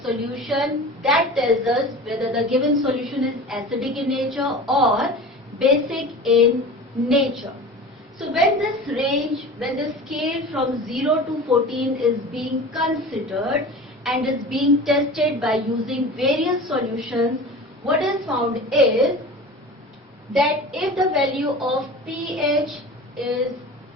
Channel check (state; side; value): normal; both; correlation 0.35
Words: solution. That tells us whether the given solution is acidic in nature or basic in nature. So when this range, when the scale from 0 to 14 is being considered and is being tested by using various solutions, what is found is that if the value of pH is